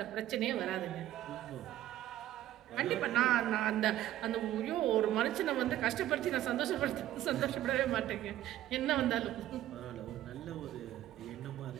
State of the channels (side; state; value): left; quieter; 13.4 dB